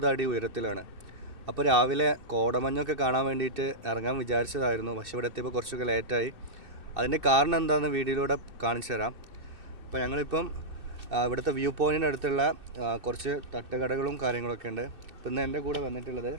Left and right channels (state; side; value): late; left; 2.6 ms